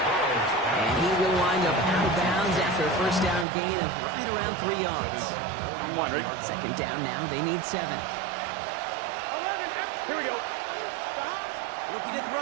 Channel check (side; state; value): left; drops out; at 3.5 s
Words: And he will wind up out of bounds after a 1st down gain of right around 3 yards. 2nd down now. They need 7. 11. Here we go. Looking to